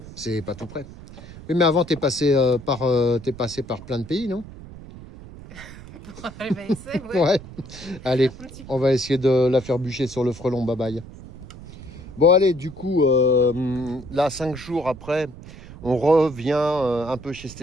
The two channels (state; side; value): noise; right; rumble, 16 dB below the sound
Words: c'est pas tout près. Oui, mais avant, t'es passé par plein de pays, non? Ouais. Allez, on va essayer de la faire bûcher sur le frelon. Bye bye. Bon, allez, du coup, là, 5 jours après, on revient un peu chez